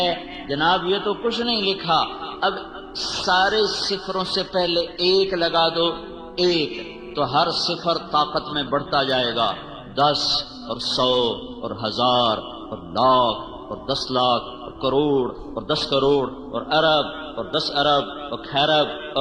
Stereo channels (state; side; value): identical; both; correlation 1.00